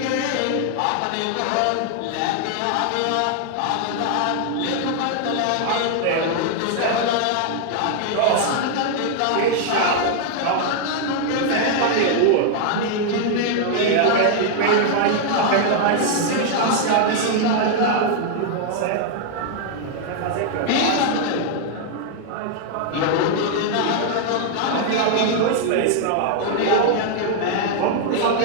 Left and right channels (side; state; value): both; different; correlation 0.00